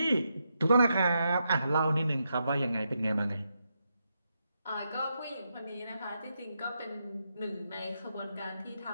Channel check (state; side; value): inverted; both; correlation -0.83